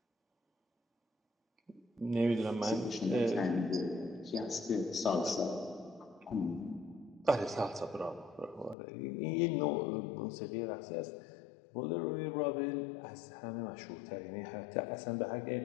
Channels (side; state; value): right; drops out; at 8.8 s